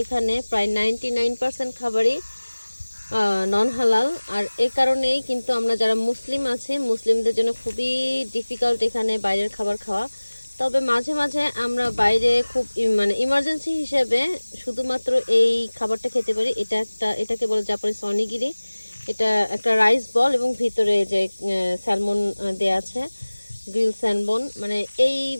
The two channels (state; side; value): inverted; both; correlation -1.00